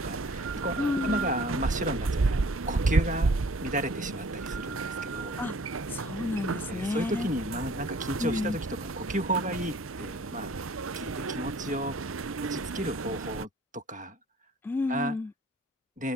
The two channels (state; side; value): normal; both; correlation 0.53